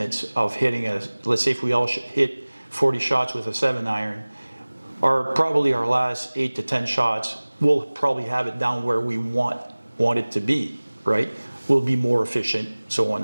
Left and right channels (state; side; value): inverted; both; correlation -1.00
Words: of hitting let's say if we all hit 40 shots with a 7-iron, probably our last 8 to 10 shots, we'll probably have it down where we want it to be, right? We'll be more efficient, so on